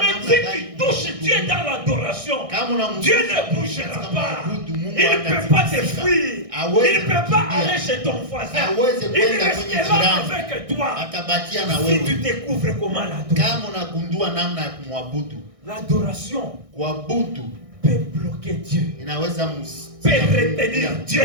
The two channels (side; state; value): left; late; 1.6 ms